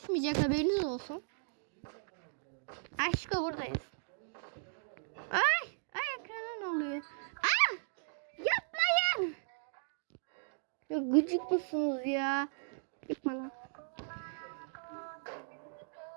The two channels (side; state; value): left; silent; digital silence